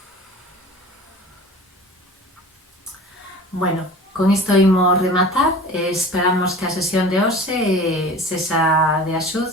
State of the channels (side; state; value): both; normal; correlation 0.40